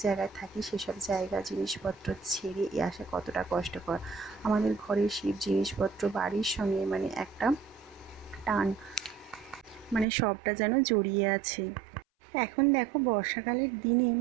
জায়গায় থাকি সেসব জায়গা জিনিসপত্র ছেড়ে আসা কতটা কষ্টকর। আমাদের ঘরের সেই জিনিসপত্র বাড়ির সঙ্গে মানে একটা টান, মানে সবটা যেন জড়িয়ে আছে। এখন দেখো বর্ষাকালের দিনে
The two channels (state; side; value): drops out; left; at 10.1 s